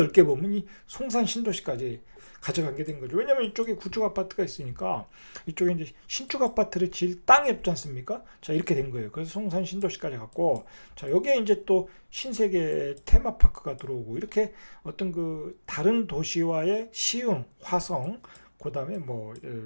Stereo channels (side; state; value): both; inverted; correlation -1.00